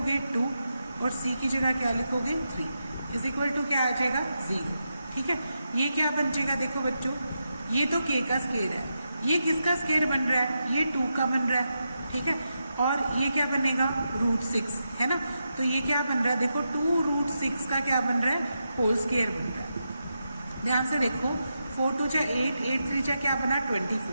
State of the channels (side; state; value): both; inverted; correlation -0.87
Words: 2 और c की जगह क्या लिखोगे 3 इज इक्वल टू क्या आ जाएगा 0। ठीक है, ये क्या बन जाएगा, देखो बच्चों ये तो k का स्क्वायर है, ये किसका स्क्वायर बन रहा है, ये 2 का बन रहा है। ठीक है, और ये क्या बनेगा √6 है ना, तो ये क्या बन रहा है, देखो 2√6 का क्या बन रहा है होल स्क्वायर बन रहा है। ध्यान से देखो 4 2 जा 8, 8 3 जा क्या बना